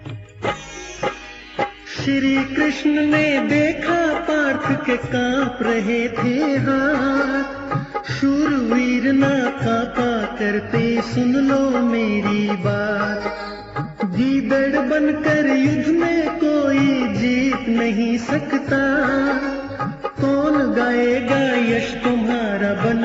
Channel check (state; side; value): identical; both; correlation 1.00